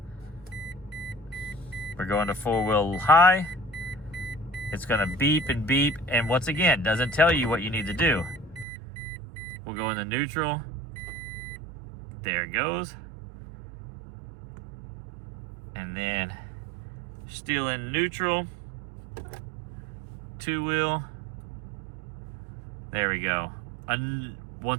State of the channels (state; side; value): drops out; left; at 8.7 s